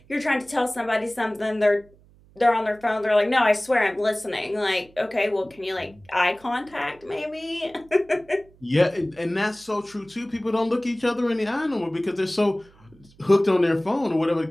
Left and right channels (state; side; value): noise; right; hum, 28 dB below the sound